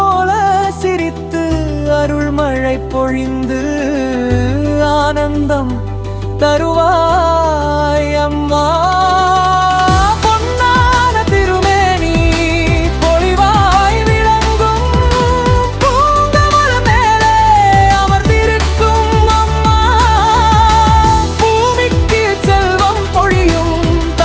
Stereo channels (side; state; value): both; identical; correlation 1.00